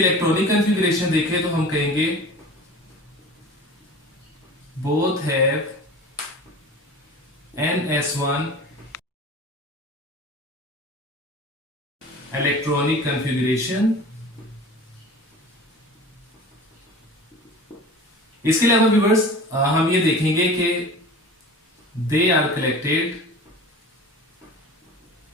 कॉन्फ़िगरेशन देखें तो हम कहेंगे both have NS1 electronic configuration। इसके अलावा व्यूअर्स हम ये देखेंगे कि they are collected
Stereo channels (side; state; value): both; normal; correlation 0.38